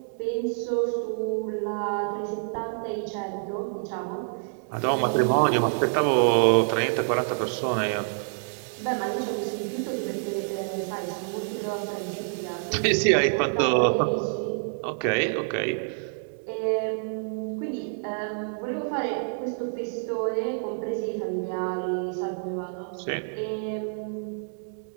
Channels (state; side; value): silent; left; 60 dB below the other